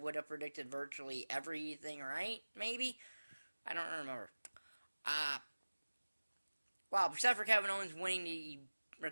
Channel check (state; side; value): inverted; both; correlation -1.00